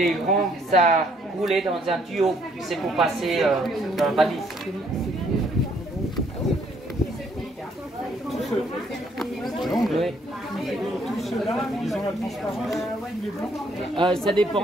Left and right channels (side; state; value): both; normal; correlation 0.67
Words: grands, ça roulait dans un tuyau. C'est pour passer dans la valise. Oui. Tous ceux-là, ils ont la transparence, les blancs ça